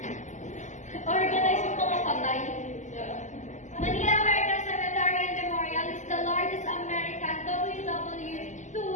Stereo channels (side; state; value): right; late; 0.35 ms